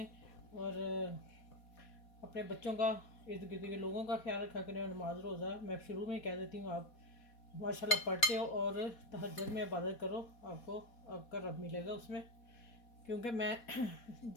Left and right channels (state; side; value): late; right; 4.2 ms